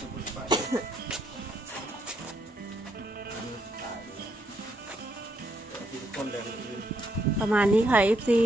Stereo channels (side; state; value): both; normal; correlation 0.75